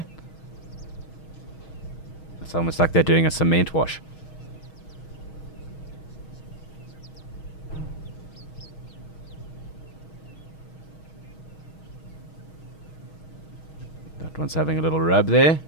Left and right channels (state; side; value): late; right; 6.3 ms